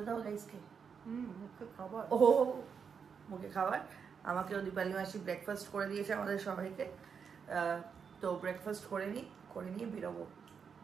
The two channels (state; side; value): quieter; left; 6.4 dB